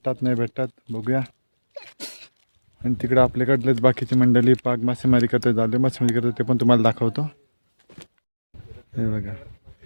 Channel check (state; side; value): inverted; both; correlation -1.00